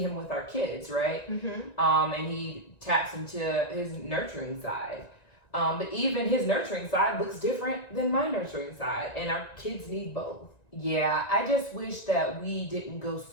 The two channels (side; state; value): right; late; 1.9 ms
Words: him with our kids, right? And he taps into his nurturing side. But even his nurturing side looks different than my nurturing side, and our kids need both. Yeah, I just wish that we didn't go